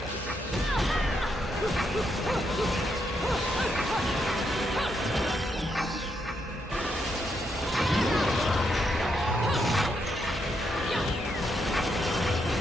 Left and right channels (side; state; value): both; normal; correlation 0.79